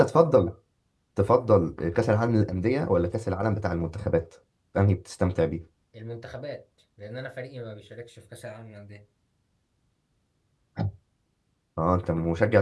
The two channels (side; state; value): both; identical; correlation 1.00